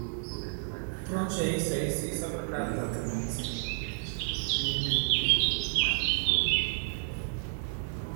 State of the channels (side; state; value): left; silent; digital silence